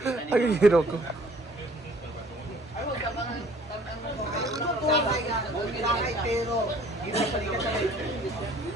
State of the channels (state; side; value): normal; both; correlation 0.55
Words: Ang hero ko. Sakay, pero...